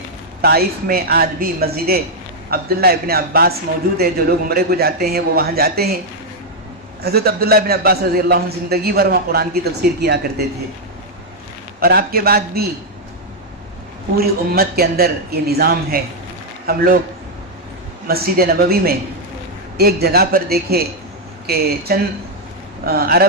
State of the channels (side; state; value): both; normal; correlation -0.01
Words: طائف میں آج بھی مسجد عبداللہ ابن عباس موجود ہے، جو لوگ عمرے کو جاتے ہیں وہ وہاں جاتے ہیں۔ حضرت عبداللہ ابن عباس رضی اللہ عنہ زندگی بھر وہاں قرآن کی تفسیر کیا کرتے تھے۔ اور آپ کے بعد بھی پوری امت کے اندر یہ نظام ہے۔ ہم لوگ مسجد نبوی میں ایک جگہ پر دیکھے کہ چند